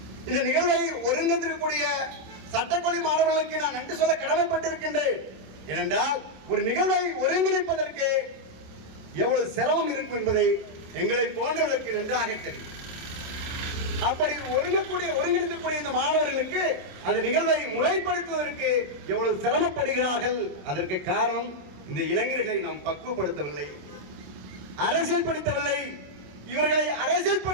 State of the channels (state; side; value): late; left; 27 ms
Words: இந்த நிகழ்வை ஒருங்கிணைக்கக்கூடிய சட்டக்கல்வி மாணவர்களுக்கு நான் நன்றி சொல்ல கடமைப்பட்டிருக்கின்றேன். ஏனென்றால் ஒரு நிகழ்வை ஒருங்கிணைப்பதற்கு எவ்வளவு சிரமம் இருக்கும் என்பதை எங்களை போன்றவர்களுக்கு நன்றாக தெரியும். அப்படி ஒருங்கிணைக்கக்கூடிய இந்த மாணவர்களுக்கு அந்த நிகழ்வை முறைப்படுத்துவதற்கு எவ்வளவு சிரமப்படுகிறார்கள். அதற்கு காரணம் இந்த இளைஞர்களை நாம் பக்குவப்படுத்தவில்லை, அரசியல்படுத்தவில்லை. இவர்களை